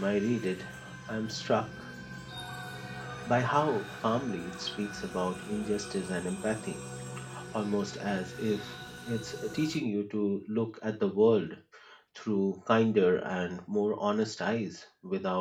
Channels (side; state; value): both; identical; correlation 1.00